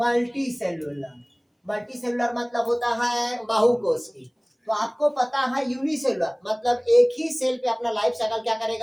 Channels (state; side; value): identical; both; correlation 1.00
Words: सेलुलर, मल्टी सेलुलर मतलब होता है बाहुकोष की। तो आपको पता है यूनिसेलुलर मतलब एक ही सेल पे अपना लाइफ साइकिल क्या